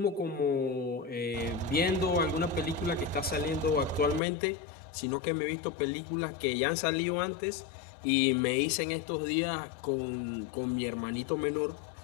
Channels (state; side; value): drops out; right; at 4.2 s